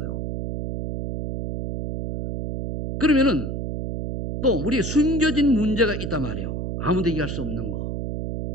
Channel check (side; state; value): right; noise; hum, 4 dB below the sound